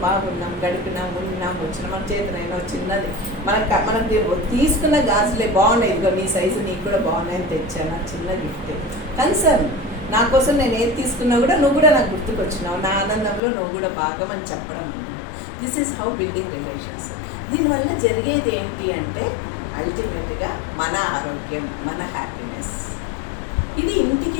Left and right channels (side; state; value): right; drops out; at 13.4 s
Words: బాగున్నాం, గడిపినాం, ఉన్నాం, వచ్చినాం. మన చేతనైనా చిన్నది మనకు తీసుకున్న గాజులే బాగున్నాయి, ఇదిగో నీ సైజు నీకు కూడా బాగున్నాయని తెచ్చాను, చిన్న గిఫ్ట్. కన్సర్న్ నా కోసం నేను ఏది తీసుకున్నా కూడా నువ్వు కూడా నాకు గుర్తుకొచ్చినావు, నా ఆనందంలో నువ్వు కూడా భాగం అని చెప్పడం. This is how building relations. దీనివల్ల జరిగేది ఏంటి అంటే అల్టిమేట్గా మన ఆరోగ్యం, మన హ్యాపీనెస్. ఇది